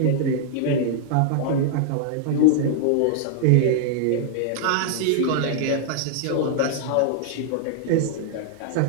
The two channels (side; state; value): both; different; correlation -0.01